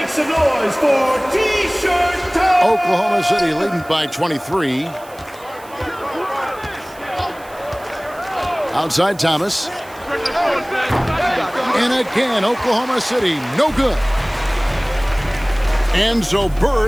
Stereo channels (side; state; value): right; noise; hiss, 23 dB below the sound